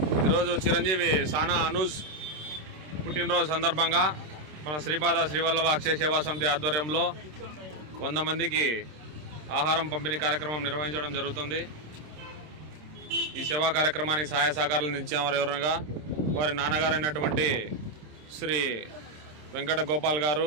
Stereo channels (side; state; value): left; late; 26 ms